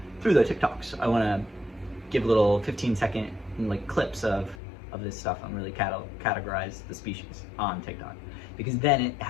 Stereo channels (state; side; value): drops out; right; at 4.6 s